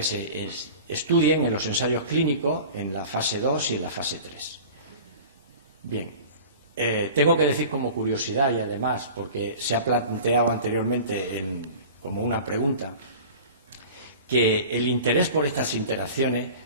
se estudien en los ensayos clínicos en la fase 2 y en la fase 3. Bien, tengo que decir como curiosidad y además porque se ha planteado anteriormente como una pregunta, que el interés por estas interacciones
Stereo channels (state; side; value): inverted; both; correlation -0.39